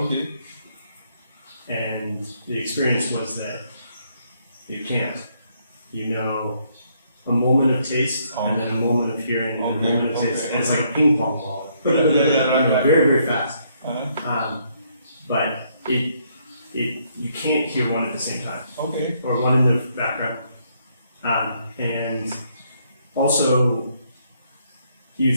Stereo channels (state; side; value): inverted; both; correlation -0.71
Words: And the experience was that you can't. You know a moment of taste and then a moment of hearing and a moment of taste. And it's like a ping pong ball. Right. Very, very fast. Uh-huh. But you can't hear one at the same time. Okay. Or one in the background. And also, you